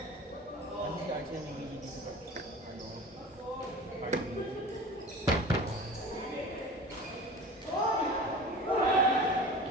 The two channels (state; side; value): normal; both; correlation 0.37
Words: Ano si Archie na may dito ba? Ano? Party.